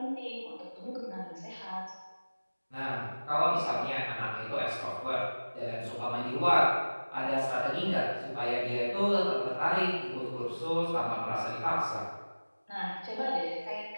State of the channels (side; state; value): both; inverted; correlation -1.00